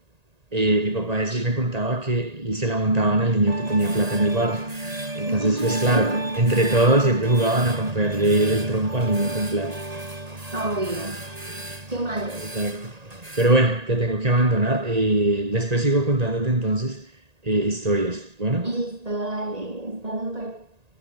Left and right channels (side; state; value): left; late; 1.8 ms